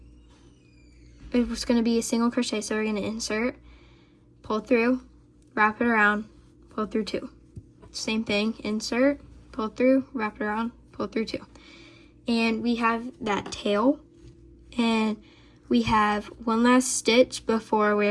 it was going to be a single crochet, so we're going to insert, pull through, wrap it around, pull through 2. Same thing, insert, pull through, wrap it around, pull through 2. And we have that tail, and we have one last stitch before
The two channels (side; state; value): both; identical; correlation 1.00